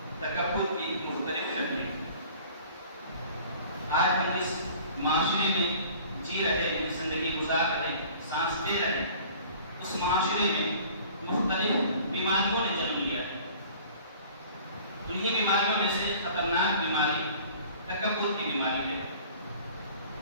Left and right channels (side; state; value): both; inverted; correlation -0.48